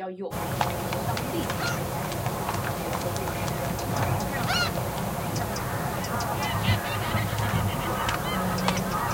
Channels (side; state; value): both; identical; correlation 1.00